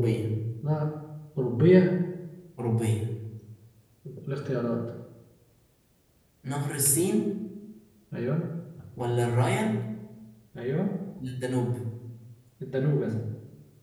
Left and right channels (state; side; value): identical; both; correlation 1.00